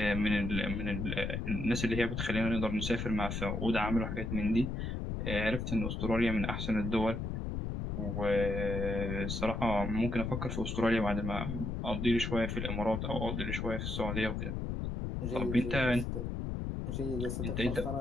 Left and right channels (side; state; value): left; noise; rumble, 3 dB below the sound